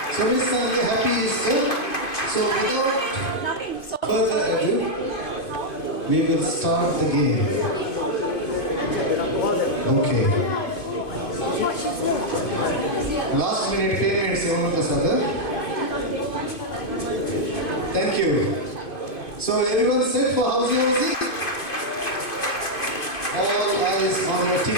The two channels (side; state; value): right; late; 2.5 ms